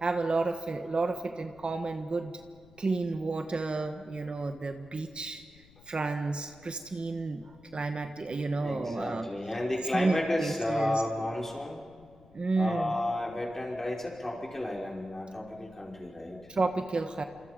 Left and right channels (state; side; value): noise; left; rumble, 24 dB below the sound